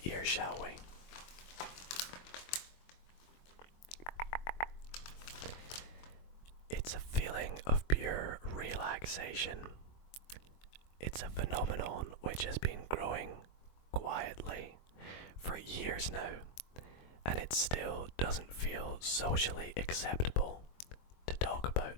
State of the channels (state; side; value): late; right; 23 ms